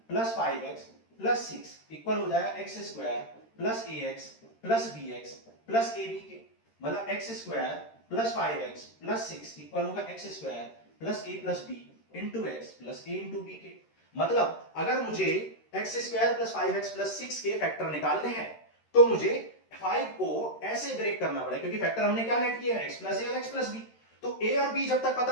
plus 5x plus 6 equal हो जाएगा x square plus ax plus bx plus ab के। मतलब x square plus 5x plus 6 equal होगा x square plus a plus b into x plus a into b के। मतलब अगर मुझे x square plus 5x plus 6 के factor निकालने हैं तो मुझे 5 को ऐसे ब्रेक करना पड़ेगा, क्योंकि फैक्टर हमने क्या लेट किया है, x प्लस a और x प्लस b। तो a और b जब तक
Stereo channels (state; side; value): late; right; 13 ms